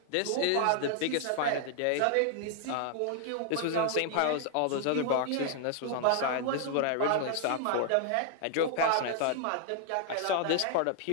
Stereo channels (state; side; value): different; both; correlation 0.00